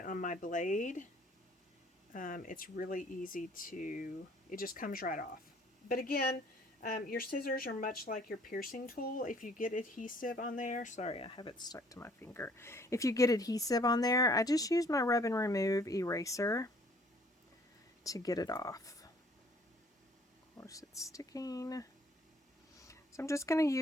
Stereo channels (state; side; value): normal; both; correlation 0.59